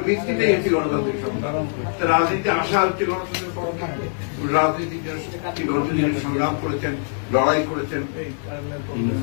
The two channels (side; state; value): right; silent; digital silence